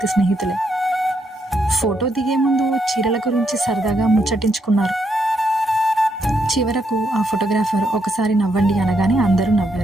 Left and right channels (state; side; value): normal; both; correlation 0.77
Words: స్నేహితులే. ఫోటో దిగే ముందు చీరల గురించి సరదాగా ముచ్చటించుకున్నారు. చివరకు ఆ ఫోటోగ్రాఫర్ ఒకసారి నవ్వండి అనగానే అందరూ